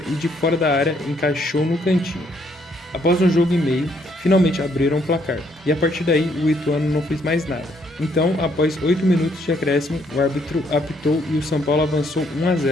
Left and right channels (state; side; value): normal; both; correlation 0.70